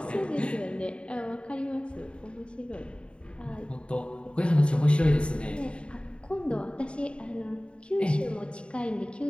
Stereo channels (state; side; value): late; right; 0.056 ms